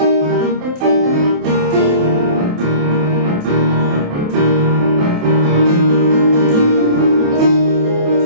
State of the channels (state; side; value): late; left; 28 ms